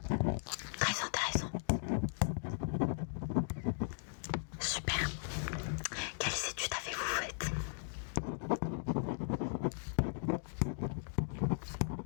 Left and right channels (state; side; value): silent; right; digital silence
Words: Très intéressant. Super. Quelles études avez-vous faites?